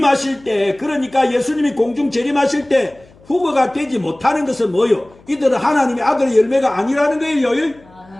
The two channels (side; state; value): left; noise; hum, 27 dB below the sound